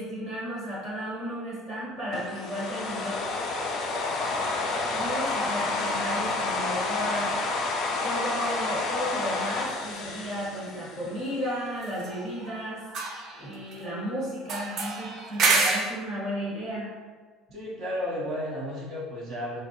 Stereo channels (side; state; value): both; normal; correlation 0.49